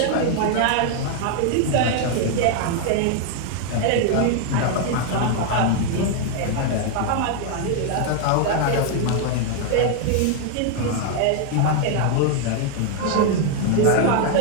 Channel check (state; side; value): different; both; correlation 0.00